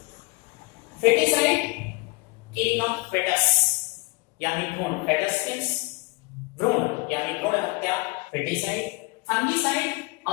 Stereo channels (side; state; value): right; quieter; 25.4 dB